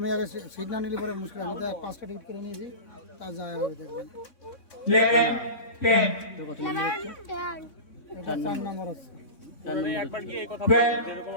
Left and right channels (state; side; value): late; right; 3.6 ms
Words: আগে সিট না নিলে পরে মুশকিল। আমি তো 5টা টিকিট করে নিয়েছি, তা যায় হবে দেখবেন। 11 10 তোর কত 11 এটা 4 নম্বর হচ্ছে। একবার গিয়ে এই কথা Well, বলো, যেরকম